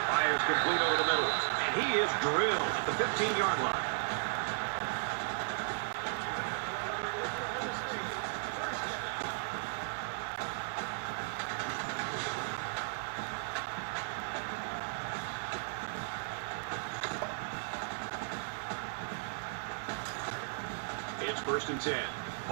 Fires complete over the middle, and he is drilled at the 15-yard line. It's 1st and 10.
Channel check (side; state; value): left; silent; digital silence